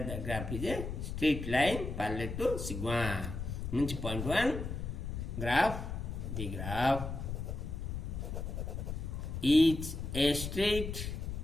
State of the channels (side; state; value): left; noise; rumble, 5 dB below the sound